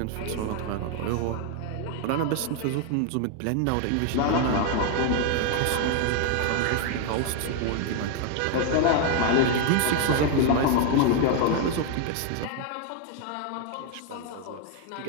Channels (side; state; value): both; different; correlation 0.00